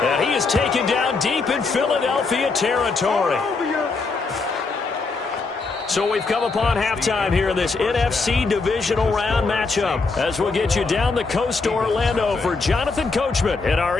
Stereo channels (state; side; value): quieter; right; 4.1 dB